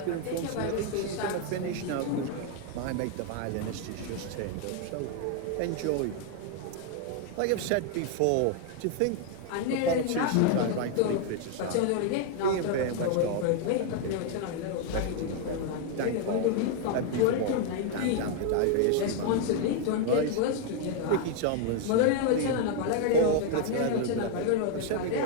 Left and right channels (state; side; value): different; both; correlation 0.01